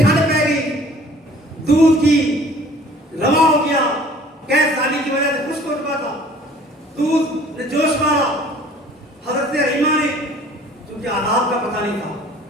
پہ گئی, دودھ کی رواں ہو گیا, قید سالی کی وجہ سے خشک ہو چکا تھا, دودھ نے جوش مارا. حضرت حلیمہ نے چونکہ آداب کا پتہ نہیں تھا,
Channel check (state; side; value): normal; both; correlation 0.52